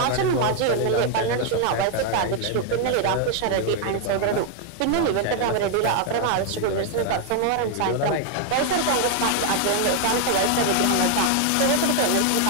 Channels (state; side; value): different; both; correlation 0.00